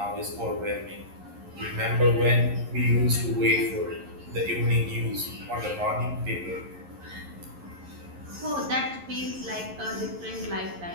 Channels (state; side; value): late; left; 11 ms